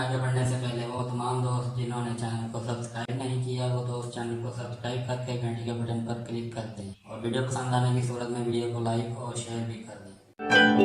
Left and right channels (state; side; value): identical; both; correlation 1.00